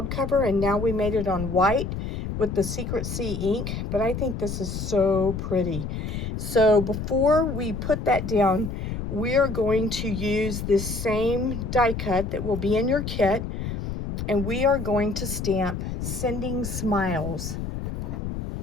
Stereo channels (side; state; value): left; noise; rumble, 5 dB below the sound